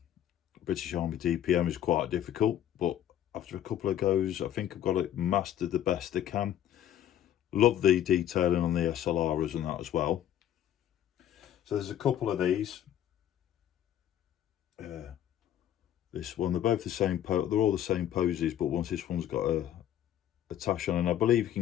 Army DPM is quite difficult, but after a couple of goes, I think I've got it mastered the best I can. Love the detailing on the SLRs and that as well. So there's a couple of these. This one, they're both the same, they're all the same poses, but this one's got a tash on, and I believe you can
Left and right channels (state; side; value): quieter; right; 11.1 dB